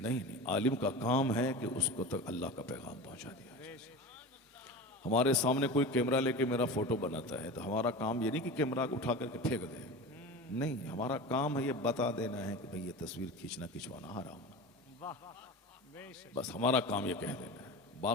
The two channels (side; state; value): both; normal; correlation 0.30